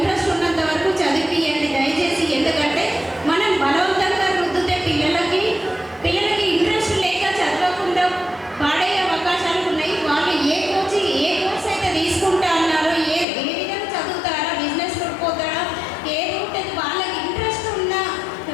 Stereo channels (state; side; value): drops out; right; at 13.2 s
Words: ఉన్నంత వరకు చదివియండి దయచేసి. ఎందుకంటే మనం బలవంతంగా రుద్దితే పిల్లలకి ఇంట్రెస్ట్ లేక చదవకుండా